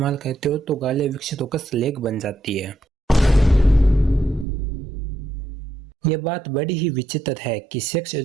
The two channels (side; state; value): left; drops out; at 4.5 s